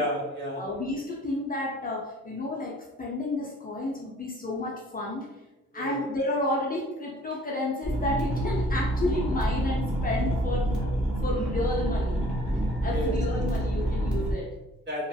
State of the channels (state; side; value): normal; both; correlation 0.55